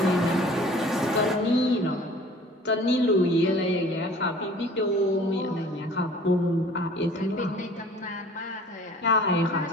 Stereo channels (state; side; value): normal; both; correlation 0.48